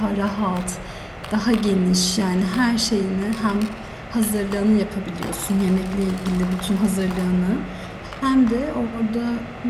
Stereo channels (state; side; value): identical; both; correlation 1.00